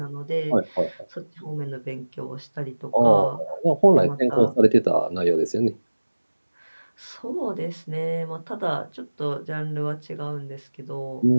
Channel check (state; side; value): inverted; both; correlation -1.00